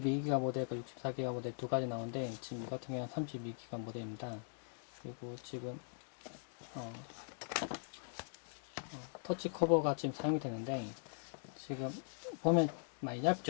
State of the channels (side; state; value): right; silent; digital silence